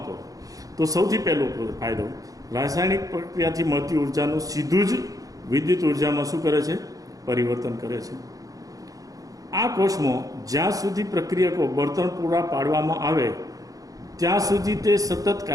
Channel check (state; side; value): late; left; 0.17 ms